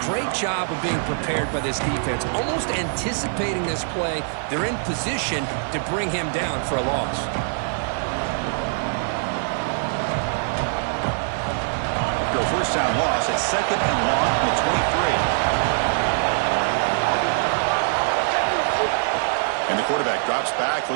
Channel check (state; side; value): silent; left; digital silence